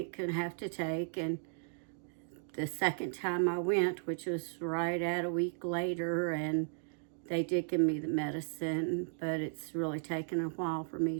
and have to take. And the second time I went, which was right at a week later, and they did give me the medicine, but it's really taken a while for me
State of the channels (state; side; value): silent; left; digital silence